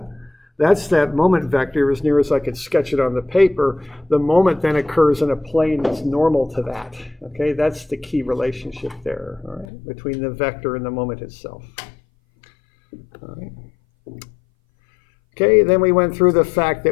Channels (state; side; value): drops out; right; at 9.7 s